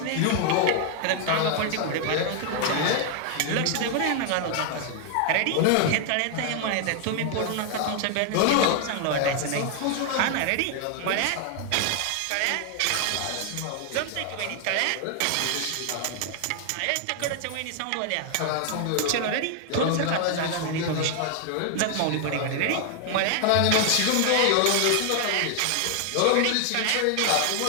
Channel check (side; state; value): both; different; correlation 0.00